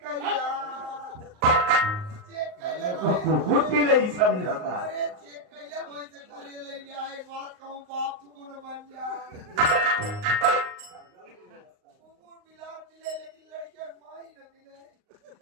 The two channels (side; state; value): left; late; 38 ms